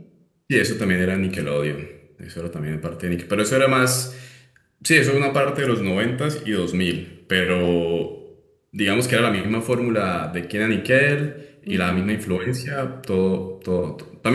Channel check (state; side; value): identical; both; correlation 1.00